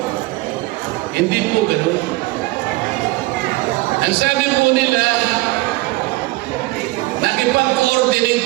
Hindi po ganun. Ang sabi po nila, nakipag-coordinate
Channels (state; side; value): quieter; left; 20.8 dB